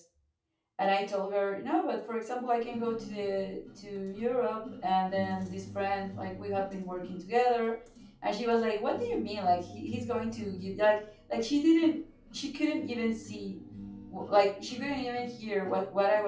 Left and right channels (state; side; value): identical; both; correlation 1.00